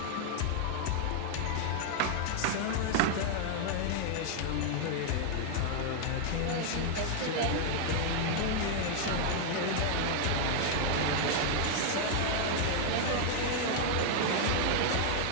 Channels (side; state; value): both; different; correlation 0.00